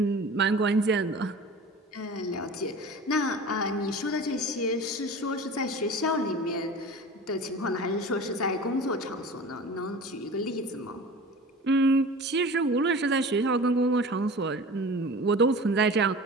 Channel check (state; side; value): normal; both; correlation 0.37